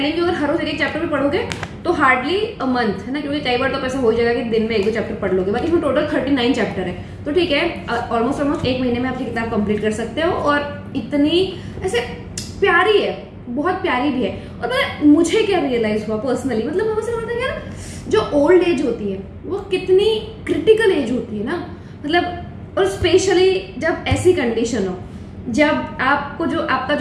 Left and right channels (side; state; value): both; identical; correlation 1.00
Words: यू, अगर हर रोज एक चैप्टर भी पढ़ोगे तो हार्डली अ मंथ, है ना, क्योंकि कई बार तो ऐसा हो जाएगा कि दिन में 1-2 चैप्टर पढ़ लोगे. बाकी इसमें टोटल 39 चैप्टर है, तो ठीक है, ऑलमोस्ट 1 महीने में आप ये किताब कंप्लीट कर सकते हो. और इतनी ऐसे प्यारी है, बहुत प्यारी भी है. और मुझे क्या रियलाइज हुआ पर्सनली, मतलब मुझे लगता है यार जो ओल्ड एज होती है वो कितनी क्रिटिकल एज होती है ना. मतलब और स्पेशली जब ऐसी कंडीशन हो, जब आपको जो आपका